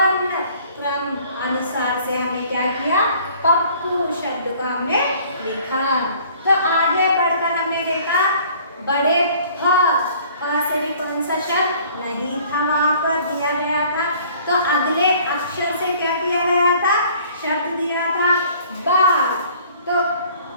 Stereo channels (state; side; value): inverted; both; correlation -0.54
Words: चाकू शब्द को हमने लिखा। तो आगे बढ़कर हमने देखा बड़े फ से भी कौन सा शब्द नहीं था वहां पर दिया गया था। तो अगले अक्षर से क्या किया गया था, शब्द दिया था बात। तो